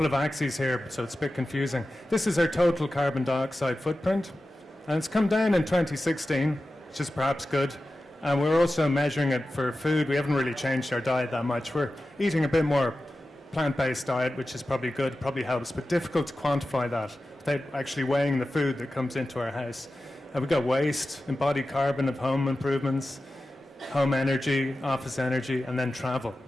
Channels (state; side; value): normal; both; correlation 0.94